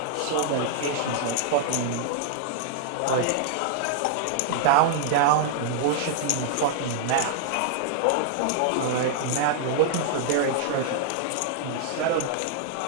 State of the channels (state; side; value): different; both; correlation -0.01